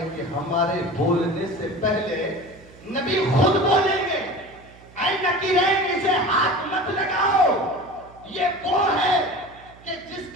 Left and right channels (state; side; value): noise; right; hum, 23 dB below the sound